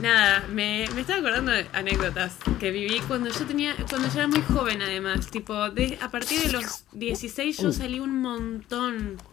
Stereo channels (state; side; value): quieter; right; 13.4 dB